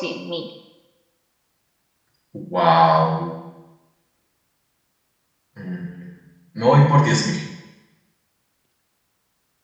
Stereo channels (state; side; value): identical; both; correlation 1.00